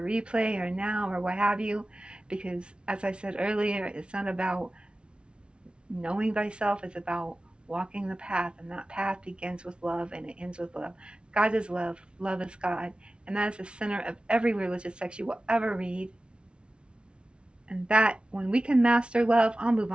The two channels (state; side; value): late; left; 0.057 ms